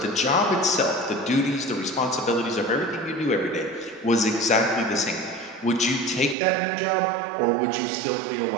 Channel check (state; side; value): drops out; left; at 6.4 s